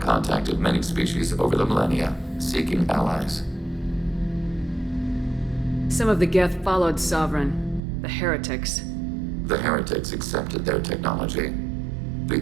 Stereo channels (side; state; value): left; drops out; at 7.8 s